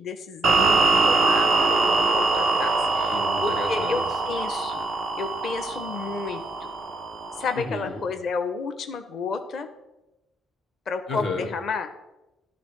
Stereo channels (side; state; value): both; normal; correlation 0.73